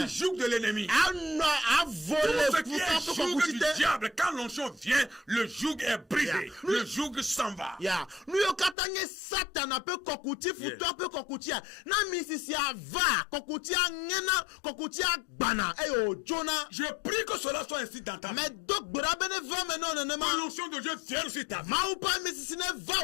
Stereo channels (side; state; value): right; drops out; at 8.8 s